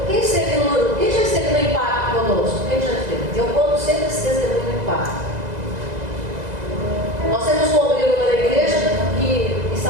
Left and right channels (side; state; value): left; late; 2.0 ms